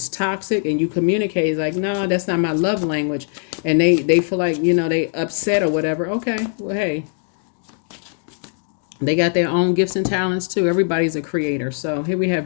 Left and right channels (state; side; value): silent; right; 57 dB below the other